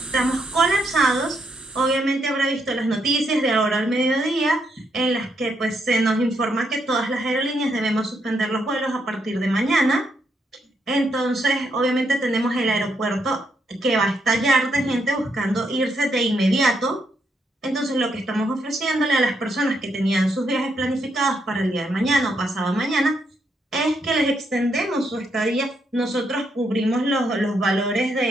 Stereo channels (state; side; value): normal; both; correlation 0.77